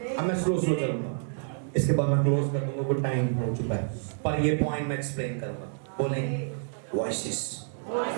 अब मैं स्लो चलूंगा, इसके बाद मैं क्लोज कर दूंगा, कुछ टाइम हो चुका है, पर ये पॉइंट मैं एक्सप्लेन करूंगा। बोलें वॉइसेस।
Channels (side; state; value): left; silent; digital silence